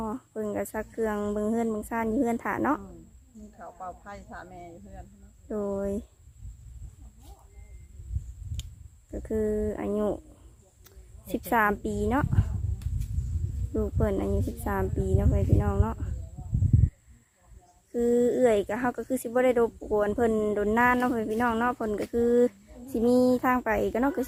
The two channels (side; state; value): both; identical; correlation 1.00